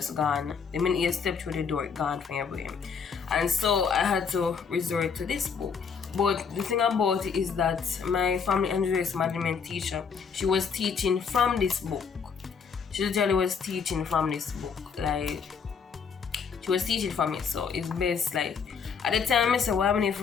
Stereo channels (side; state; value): right; quieter; 6.1 dB